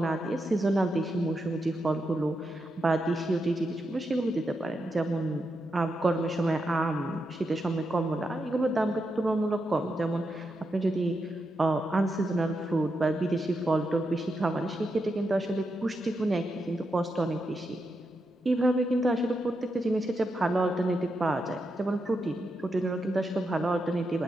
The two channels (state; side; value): normal; both; correlation 0.85